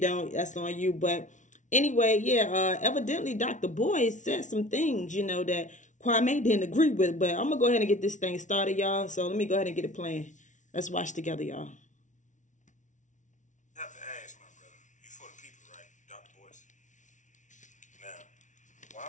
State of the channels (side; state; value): right; late; 0.36 ms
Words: that's on you. But anyway, yeah, evidently Dr. Boyce said some things, that Kwame didn't agree with. But I'm gonna go ahead and get this thing started, y'all. So let me go ahead and get it playing. Let's watch together, y'all. I have to ask, my brother, you for the people, right, Dr. Boyce? Now,